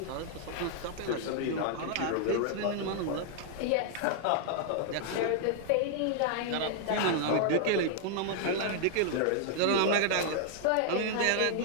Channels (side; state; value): both; different; correlation 0.00